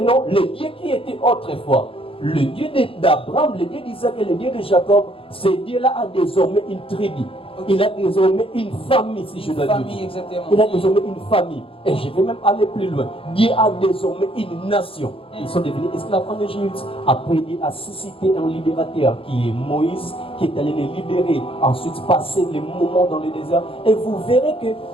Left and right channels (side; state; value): right; late; 0.27 ms